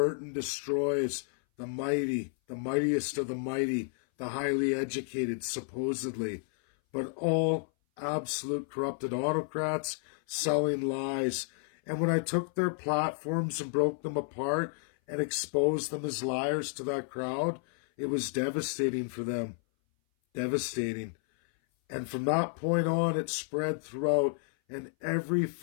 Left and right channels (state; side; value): silent; right; 57 dB below the other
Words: destroys the mighty, the mightiest of the mighty, the highly educated, supposedly, but all absolute corrupted autocrats selling lies. And when I took their platforms and broke them apart and exposed them as liars to that crowd, it was devastating for them. Devastating. And from that point on, it spread throughout, and every